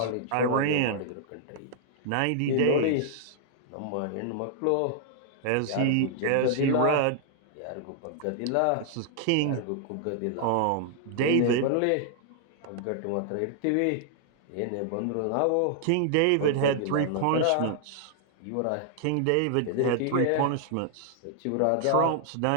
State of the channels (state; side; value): different; both; correlation -0.01